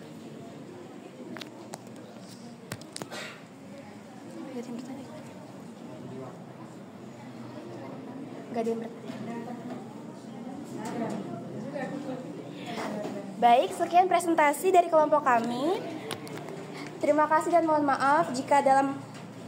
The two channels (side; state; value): both; identical; correlation 1.00